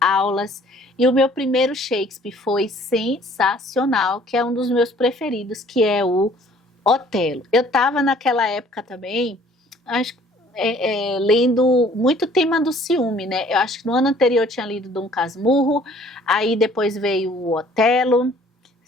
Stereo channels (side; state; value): both; normal; correlation 0.56